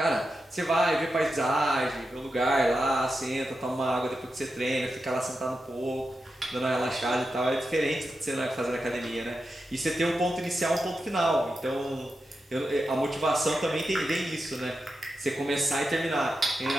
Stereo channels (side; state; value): both; normal; correlation 0.89